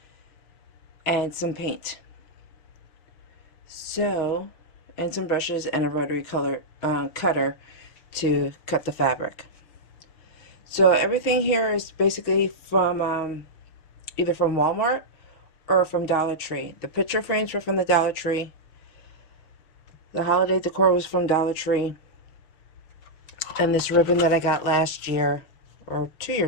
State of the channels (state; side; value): late; right; 6.3 ms